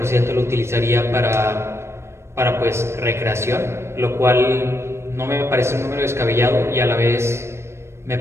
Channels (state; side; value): late; left; 0.13 ms